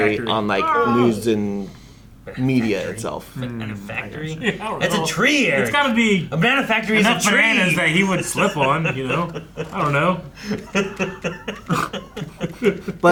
factory. on like news and media itself. Banana factory? don't That's know. a tree, Eric. It's got to be a banana factory is a enough tree. bananas that he would slip on, you know? I don't know.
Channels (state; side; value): identical; both; correlation 1.00